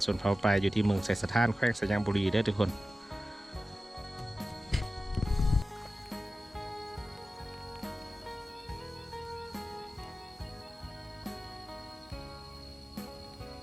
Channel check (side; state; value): both; normal; correlation 0.95